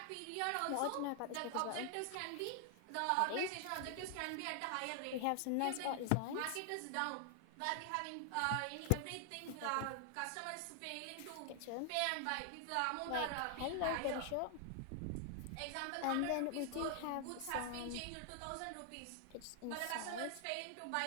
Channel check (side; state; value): both; different; correlation 0.00